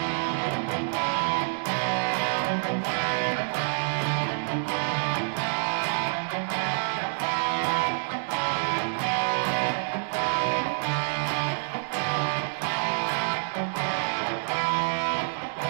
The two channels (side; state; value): left; silent; digital silence